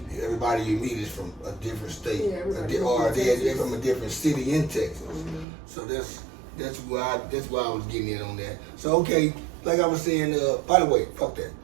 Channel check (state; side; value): drops out; left; at 5.5 s